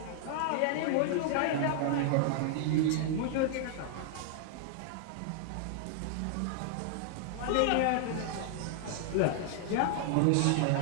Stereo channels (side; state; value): both; different; correlation -0.01